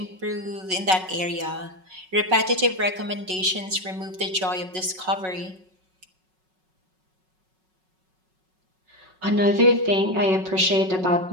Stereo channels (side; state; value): left; late; 5.4 ms